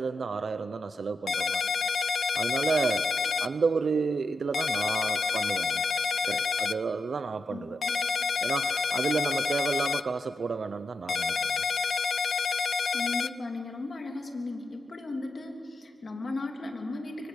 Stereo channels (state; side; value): normal; both; correlation 0.86